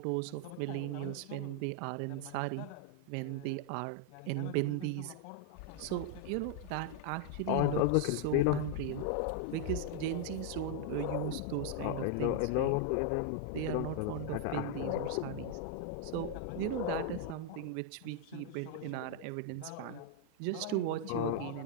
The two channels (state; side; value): different; both; correlation 0.00